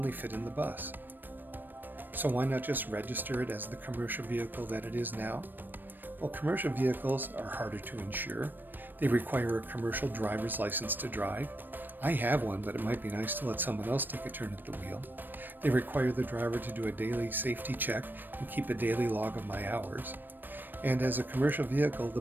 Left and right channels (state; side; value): late; left; 0.092 ms